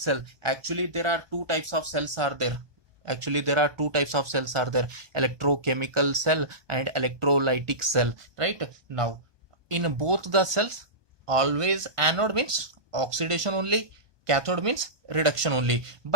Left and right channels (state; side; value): late; left; 1.2 ms